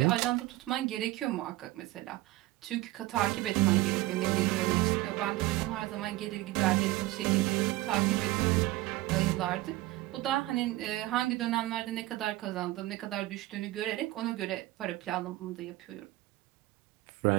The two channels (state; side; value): quieter; left; 18.1 dB